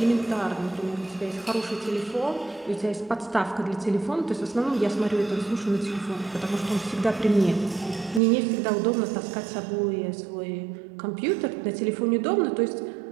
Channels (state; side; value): drops out; left; at 8.2 s